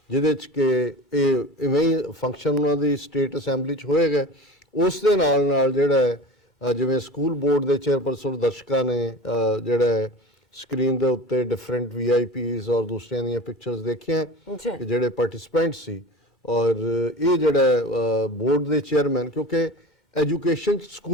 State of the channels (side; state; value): both; normal; correlation 0.34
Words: ਜਿਹਦੇ ਚ ਕਿ ਇਹ ਇਵੇਂ ਹੀ ਫੰਕਸ਼ਨ ਉਹਨਾਂ ਦੀ ਸਟੇਟ ਅਸੈਂਬਲੀ ਚ ਹੋਏਗਾ ਉਸ ਦੇ ਨਾਲ ਜਿਹੜਾ ਜਿਵੇਂ ਸਕੂਲ ਬੋਰਡ ਦੇ ਚੇਅਰਪਰਸਨ ਦਰਸ਼ਕਾਂ ਨੇ ਜਿਹੜਾ ਸਕਰੀਨ ਦੇ ਉੱਤੇ ਡਿਫਰੈਂਟ VIPs ਔਰ ਦੂਸਰਿਆਂ ਦੀਆਂ ਪਿਕਚਰਸ ਦੇਖੀਆਂ ਕਿ ਜਿਹੜੇ ਪਾਰਟਿਸਿਪੈਂਟ ਸੀ ਔਰ ਇਹ ਜਿਹੜਾ ਬੋਰਡ ਦੇ ਚੇਅਰਮੈਨ ਕਿਉਂਕਿ ਐਜੂਕੇਸ਼ਨ